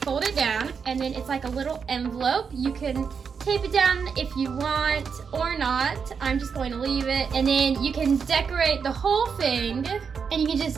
fold it down, and then it's like a little envelope. You can tape it down if you want or not. I'm just going to leave it. And then you can decorate the whole thing, and you can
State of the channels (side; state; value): left; quieter; 6.1 dB